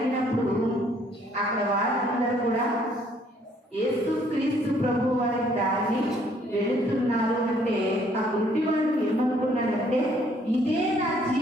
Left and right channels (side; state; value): both; normal; correlation 0.64